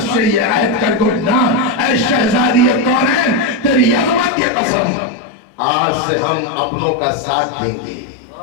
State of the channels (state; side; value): drops out; right; at 4.3 s